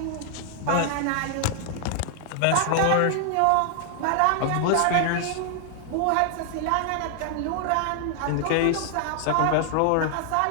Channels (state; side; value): different; both; correlation 0.00